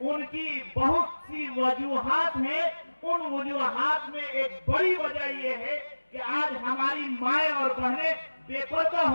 उनकी बहुत सी वजूहात हैं। उन वजूहात में एक बड़ी वजह यह है कि आज हमारी माएं और बहनें बेपर्दा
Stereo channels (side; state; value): both; inverted; correlation -1.00